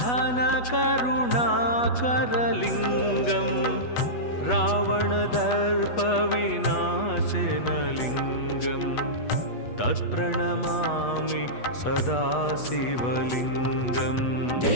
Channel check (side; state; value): right; late; 8.2 ms